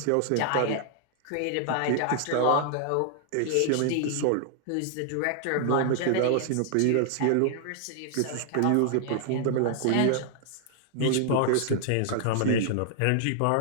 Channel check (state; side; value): different; both; correlation 0.00